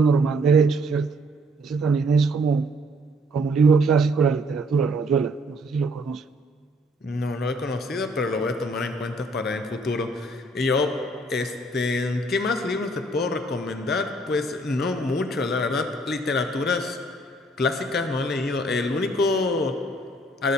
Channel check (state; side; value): normal; both; correlation 0.63